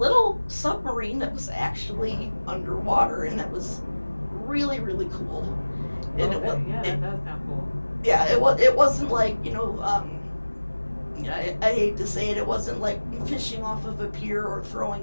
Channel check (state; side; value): inverted; both; correlation -1.00